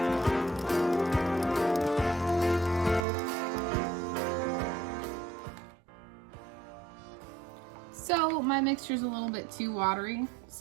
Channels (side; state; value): left; drops out; at 3.1 s